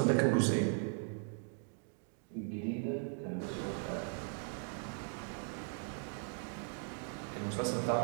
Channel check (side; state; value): left; silent; 52 dB below the other